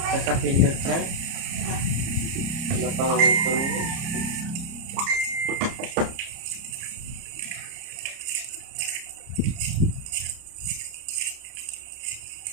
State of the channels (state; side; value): late; left; 30 ms